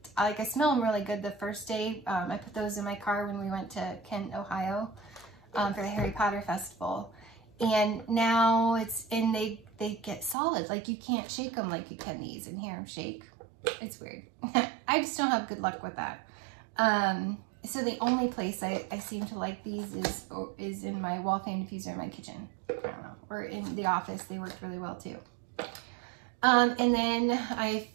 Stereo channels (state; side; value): drops out; left; at 10.4 s